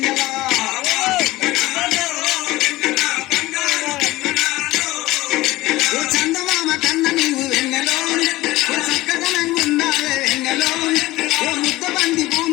చందమామ కన్న నీవు వెన్నెలో చక్కదనంగా ఉన్నావే వెన్నెలో ముద్ద బంది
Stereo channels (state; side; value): quieter; right; 18.3 dB